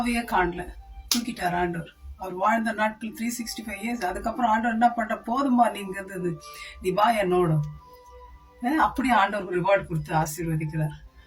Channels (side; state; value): both; identical; correlation 1.00